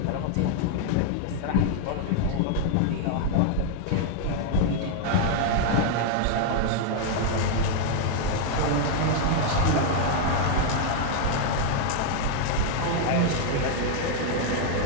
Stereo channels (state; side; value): different; both; correlation 0.00